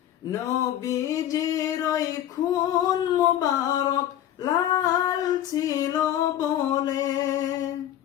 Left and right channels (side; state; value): right; quieter; 11.7 dB